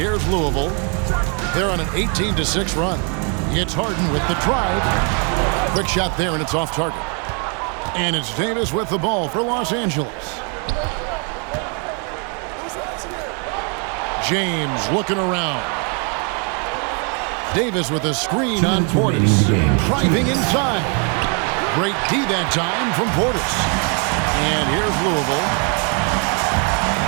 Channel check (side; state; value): left; quieter; 37.5 dB